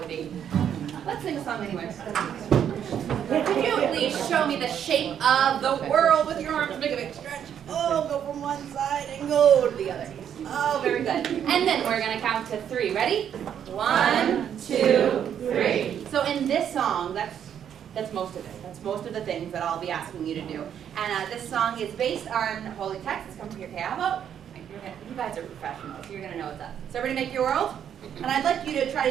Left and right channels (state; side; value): quieter; left; 9.0 dB